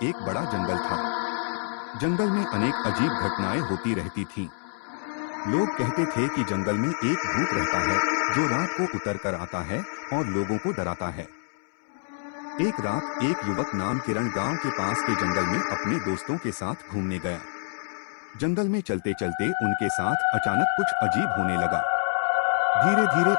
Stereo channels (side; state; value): right; silent; 60 dB below the other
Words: एक बड़ा जंगल था। जंगल में अनेक अजीब घटनाएं होती रहती थीं। लोग कहते थे कि जंगल में एक भूत रहता है जो रात को उतर कर आता है और लोगों को डराता है। एक रात एक युवक नाम किरण गांव के पास के जंगल में अपने दोस्तों के साथ घूमने गया। जंगल में चलते चलते उनके साथ अचानक कुछ अजीब होने लगा। धीरे धीरे